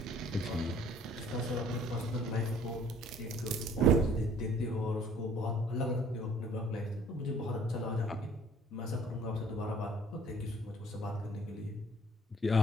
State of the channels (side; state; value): both; normal; correlation 0.55